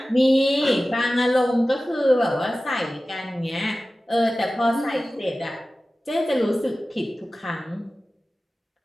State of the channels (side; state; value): both; normal; correlation 0.96